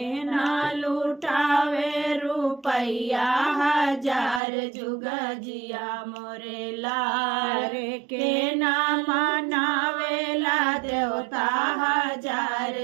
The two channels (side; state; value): left; drops out; at 4.4 s